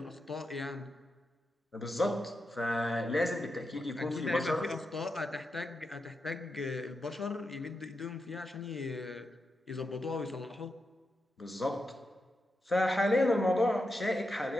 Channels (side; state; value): both; normal; correlation 0.87